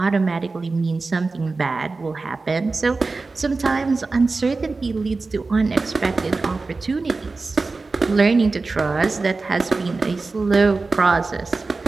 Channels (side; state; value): left; quieter; 3.8 dB